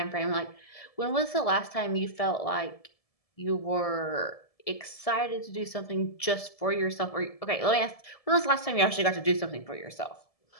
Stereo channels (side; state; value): right; late; 1.7 ms